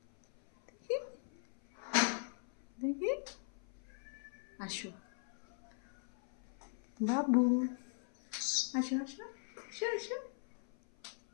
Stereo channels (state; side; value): silent; right; 51 dB below the other